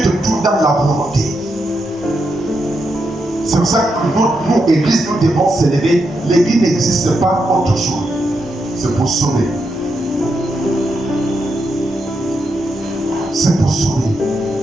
te trouve dans la volonté, c'est pour ça que nous, Église, nous devons s'élever. L'Église n'existe pas autre chose. C'est pour sauver. C'est pour sauver.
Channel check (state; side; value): normal; both; correlation 0.83